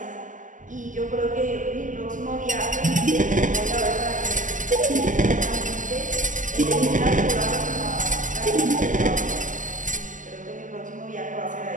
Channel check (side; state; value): left; late; 0.37 ms